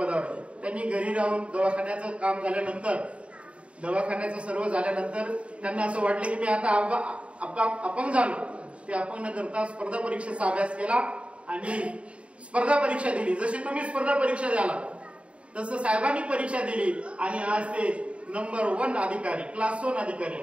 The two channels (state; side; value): late; left; 0.061 ms